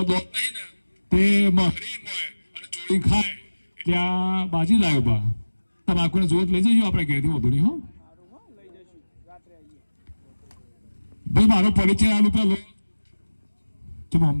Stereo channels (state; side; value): inverted; both; correlation -1.00